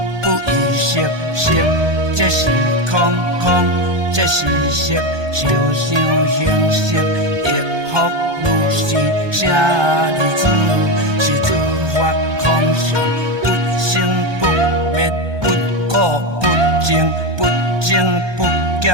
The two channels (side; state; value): left; late; 1.2 ms